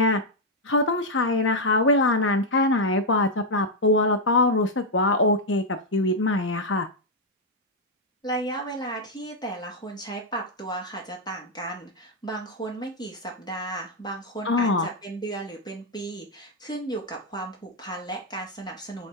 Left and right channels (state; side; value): normal; both; correlation -0.01